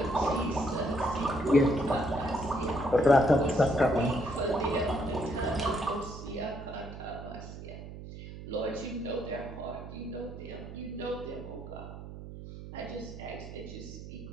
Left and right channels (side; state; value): right; noise; hum, 12 dB below the sound